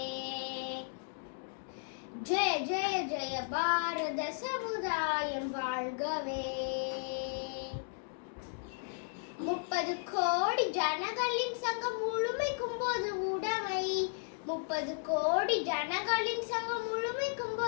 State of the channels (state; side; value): silent; right; digital silence